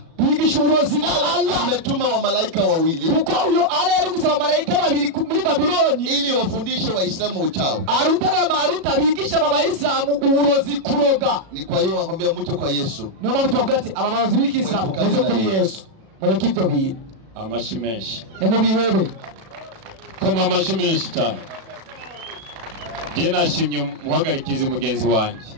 bigisha uburozi na Allah ametuma wa malaika wawili, kuko uyo ala yari gusaba malaika babiri muri Babyloni ili wafundishe Waislamu uchawi. Aruta na Maruta bigisha aba Waislamu uburozi kuroga. Ni kwa hiyo wakwambia muje kwa Yesu. Niyo mpamvu tubagati aba barozi b'ikisilamu muze kuri Yesu mureke ibyo bintu. Amashimeshi nimubihebe koma amashimeshi cyane. Je nashimye muhagarikize mugenzi wanje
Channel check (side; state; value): left; late; 36 ms